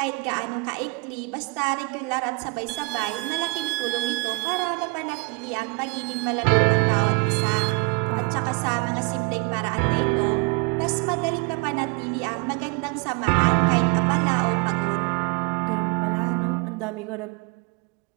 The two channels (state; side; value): quieter; left; 28.7 dB